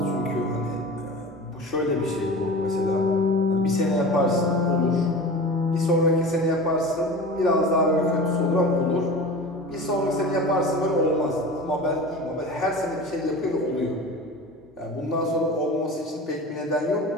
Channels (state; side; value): normal; both; correlation 0.34